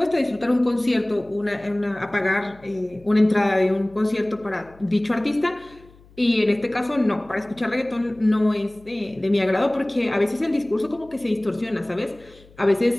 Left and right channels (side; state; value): left; noise; hum, 26 dB below the sound